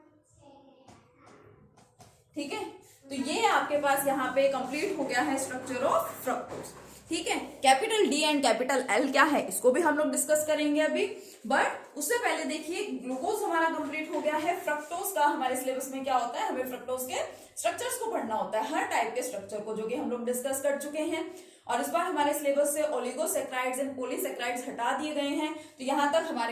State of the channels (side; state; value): both; identical; correlation 1.00